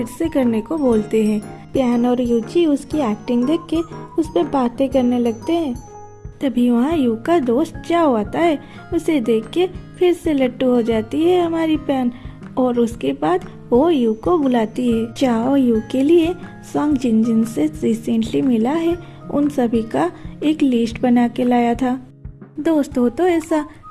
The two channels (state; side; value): identical; both; correlation 1.00